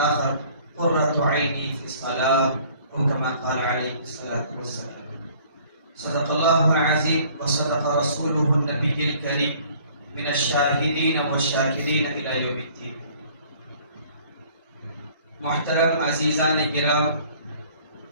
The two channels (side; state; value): both; inverted; correlation -0.55